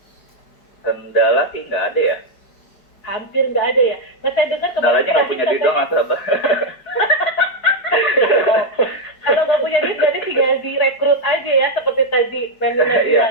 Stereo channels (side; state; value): right; late; 5.0 ms